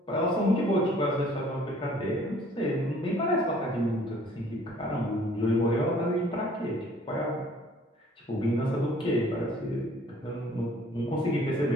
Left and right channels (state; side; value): normal; both; correlation 0.55